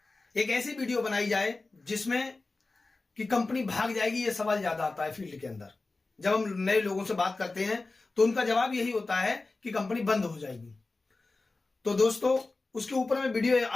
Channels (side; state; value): right; quieter; 3.4 dB